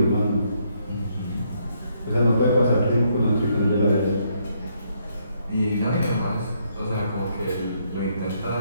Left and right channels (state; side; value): inverted; both; correlation -0.73